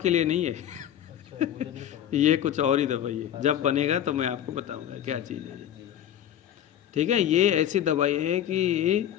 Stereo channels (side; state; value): right; quieter; 10.7 dB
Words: के लिए नहीं है। अच्छा, मुझे नहीं पता। ये कुछ और ही दवाई है, जब बनेगा तो मैं आपको बताऊंगा क्या चीज़ है। ठीक है, ये ऐसी दवाई है कि